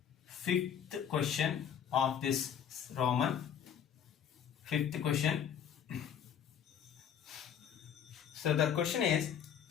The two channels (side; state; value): right; quieter; 8.6 dB